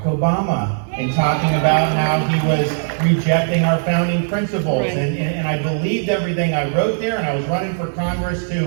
Obama and talking about how he was rejecting our founding principles, and I believed everything I wrote there, and I was running for Congress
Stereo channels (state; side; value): silent; left; 61 dB below the other